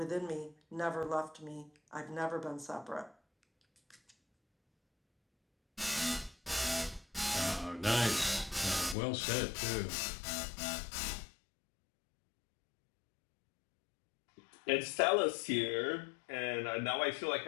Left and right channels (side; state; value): right; drops out; at 9.0 s